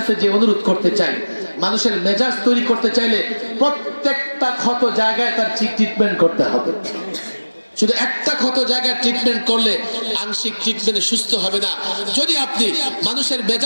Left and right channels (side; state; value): both; inverted; correlation -1.00